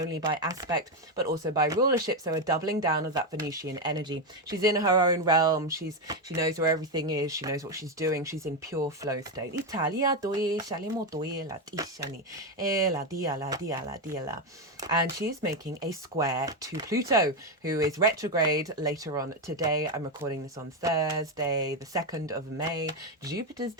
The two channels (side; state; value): both; normal; correlation 0.08